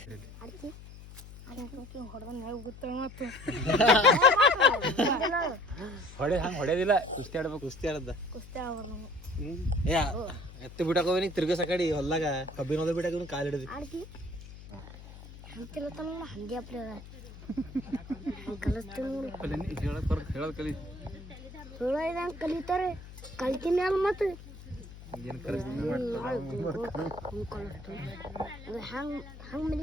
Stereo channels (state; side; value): noise; left; hum, 16 dB below the sound